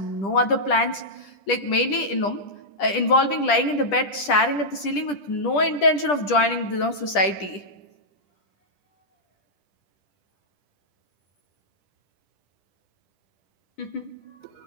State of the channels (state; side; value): late; right; 10 ms